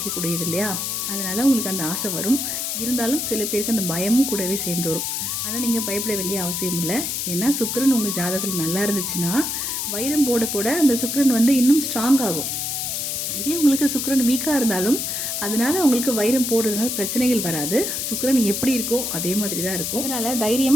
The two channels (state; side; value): noise; left; hiss, 2 dB below the sound